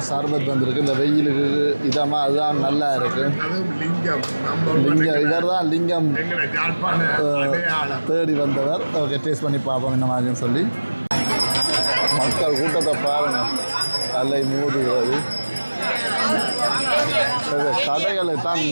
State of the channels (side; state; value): both; inverted; correlation -1.00